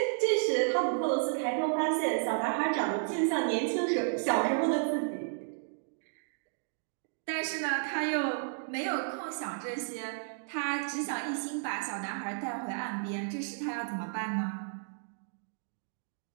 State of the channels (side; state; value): left; silent; digital silence